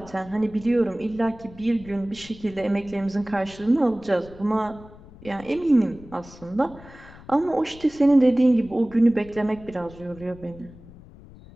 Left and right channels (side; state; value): left; noise; rumble, 20 dB below the sound